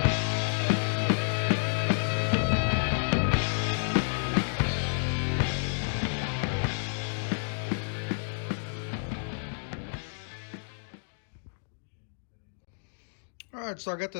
All right, so I got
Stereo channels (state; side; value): silent; right; digital silence